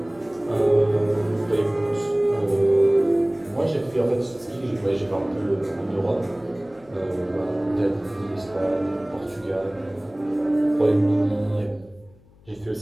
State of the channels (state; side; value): noise; left; hum, 27 dB below the sound